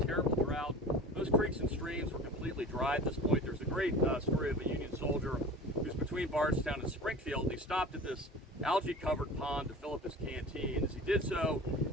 drought. Those creeks and streams were completely dry at this point. There's a great story of a Union soldier who's between Bardstown and Springfield, and he stopped at this algae-covered pond to fill up his canteen. As he did so,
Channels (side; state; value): both; normal; correlation 0.38